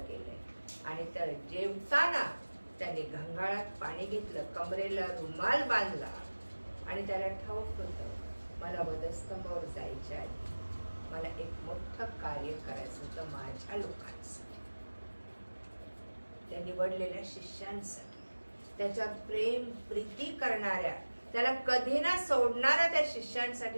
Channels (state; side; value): inverted; both; correlation -1.00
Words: गेलंय. आणि तर जेवताना त्याने घंगाळात पाणी घेतलं, कमरेला रुमाल बांधला आणि त्याला ठाऊक होतं मला वधस्तंभावर जायच्या आधी मला एक मोठं कार्य करायचं होतं माझ्या लोकांसाठी, त्या निवडलेल्या शिष्यांसाठी, त्याच्या प्रेम प्रीती करणाऱ्या, त्याला कधी ना सोडणाऱ्या त्या